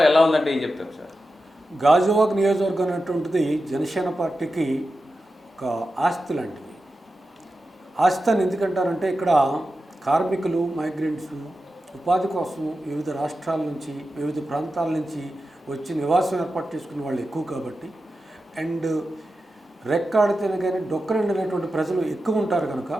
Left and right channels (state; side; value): normal; both; correlation 0.91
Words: ఎలా ఉందంటే ఏం చెప్తారు సార్? గాజువాక నియోజకవర్గం అనేటువంటిది జనసేన పార్టీకి ఒక ఆస్తి లాంటిది. ఆస్తి అని ఎందుకంటారంటే ఇక్కడ కార్మికులు, మైగ్రెంట్స్ ఉపాధి కోసం వివిధ రాష్ట్రాల నుంచి, వివిధ ప్రాంతాల నుంచి వచ్చి నివాసం ఏర్పాటు చేసుకునే వాళ్ళు ఎక్కువ కాబట్టి, అండ్ రెక్కాడితేనే కానీ డొక్కరండినటువంటి ప్రజలు ఎక్కువ ఉంటారు కనుక